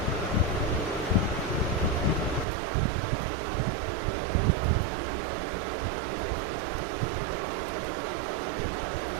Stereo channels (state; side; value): drops out; left; at 2.5 s